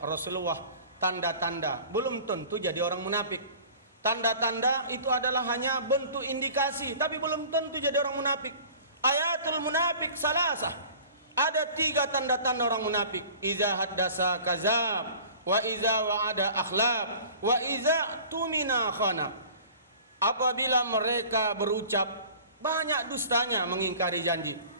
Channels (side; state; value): both; inverted; correlation -0.44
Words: Rasulullah tanda-tanda, belum tentu jadi orang munafik. Tanda-tanda itu adalah hanya bentuk indikasi, tapi belum tentu jadi orang munafik. Ayatul munafik salasah. Ada 3 tanda-tanda orang munafik. Iza haddasa kazab, wa iza wa'ada akhlab, wa iza tumina khana. Apabila mereka berucap, banyak dustanya, mengingkari janji.